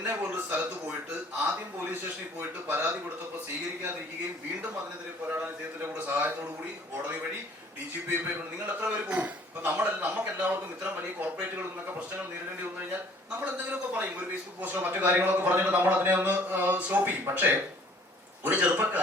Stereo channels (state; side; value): normal; both; correlation 0.55